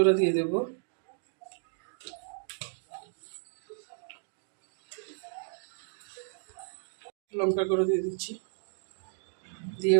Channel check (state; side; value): silent; left; digital silence